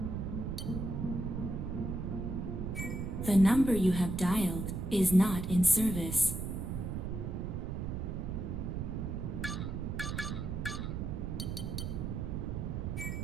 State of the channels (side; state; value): right; noise; rumble, 3 dB below the sound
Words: The number you have dialed is not in service.